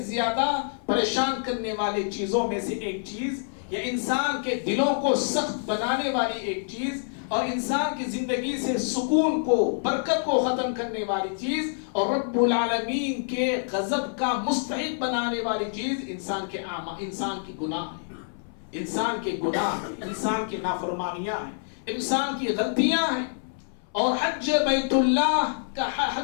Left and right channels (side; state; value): right; silent; 60 dB below the other